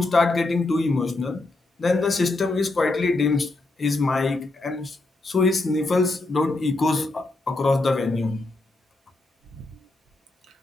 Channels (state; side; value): quieter; right; 3.0 dB